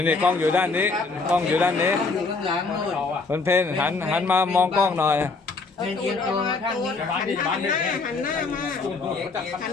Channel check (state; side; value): quieter; right; 4.0 dB